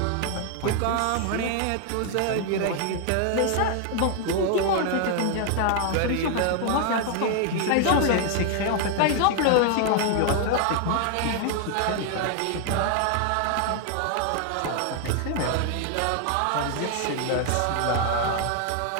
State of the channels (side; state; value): both; different; correlation 0.00